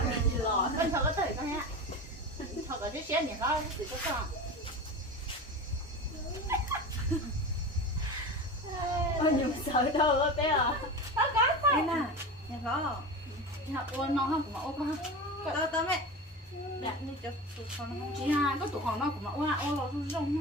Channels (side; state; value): both; normal; correlation 0.28